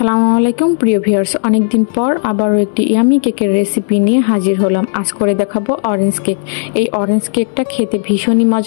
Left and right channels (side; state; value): right; silent; digital silence